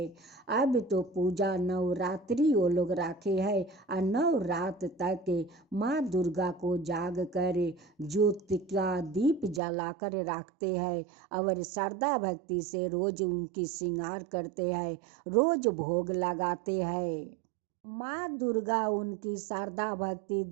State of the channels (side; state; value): left; drops out; at 9.6 s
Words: अब तो पूजा नवरात्रि वो लोग रखे हैं और 9 रात तक माँ दुर्गा को जाग कर ज्योति का दीप जलाकर रखते हैं और श्रद्धा भक्ति से रोज उनकी श्रृंगार करते हैं, रोज भोग लगाते हैं। माँ दुर्गा उनकी श्रद्धा भक्ति